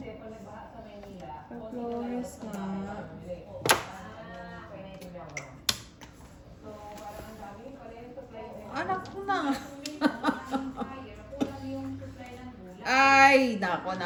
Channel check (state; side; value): identical; both; correlation 1.00